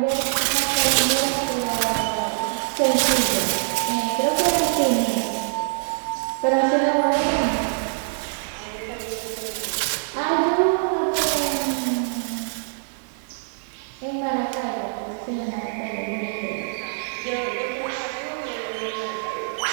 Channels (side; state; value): left; silent; digital silence